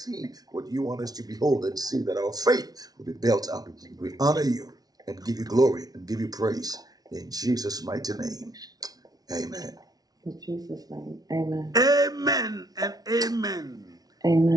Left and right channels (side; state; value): left; late; 0.19 ms